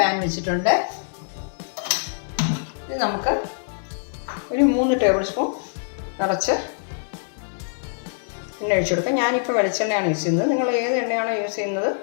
വെച്ചിട്ടുണ്ട്. ഇത് നമുക്ക് ഒരു 3 ടേബിൾ സ്പൂൺ നിറച്ച് എണ്ണ ഒഴിച്ചു കൊടുക്കാം. ഞാനിപ്പോൾ വെളിച്ചെണ്ണയാണ് യൂസ് ചെയ്യുന്നത്. നിങ്ങൾ ഏത് എണ്ണയാണോ യൂസ് ചെയ്യുന്നത്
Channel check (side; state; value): right; silent; digital silence